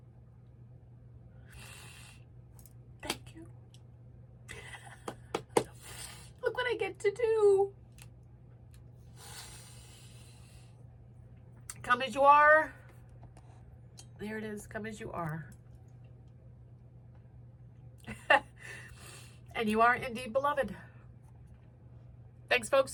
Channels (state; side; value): identical; both; correlation 1.00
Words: Thank you. Look what I get to do. Come as you are. There it is. Come as you are. And you are indeed beloved. Thanks,